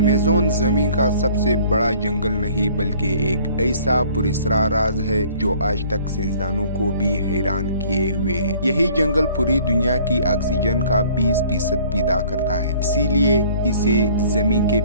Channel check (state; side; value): inverted; both; correlation -0.55